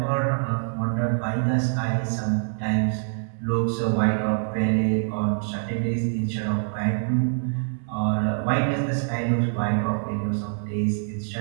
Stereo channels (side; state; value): left; silent; digital silence